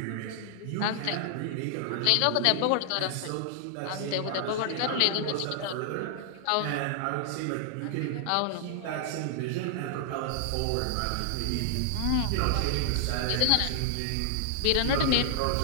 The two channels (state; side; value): different; both; correlation -0.01